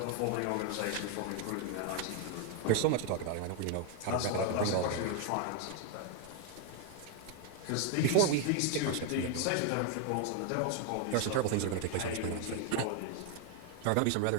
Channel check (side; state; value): both; different; correlation 0.01